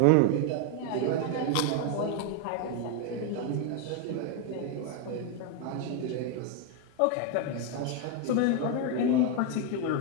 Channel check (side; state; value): both; different; correlation 0.01